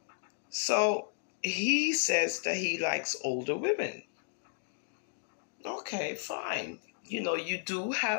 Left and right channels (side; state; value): right; silent; digital silence